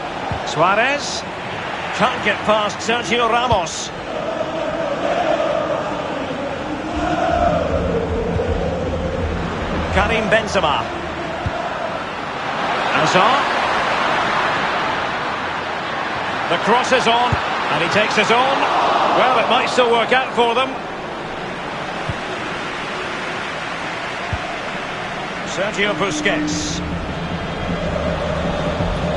Suarez, can't get past Sergio Ramos. Karim Benzema. Hazard. The cross is on, and he takes his own. Well, it might still work out for them. Sergio Busquets.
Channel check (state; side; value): identical; both; correlation 1.00